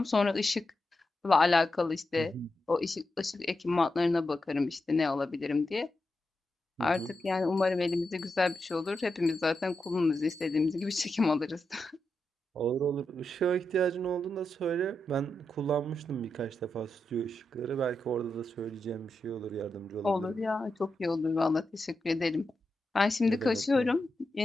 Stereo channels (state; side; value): normal; both; correlation 0.87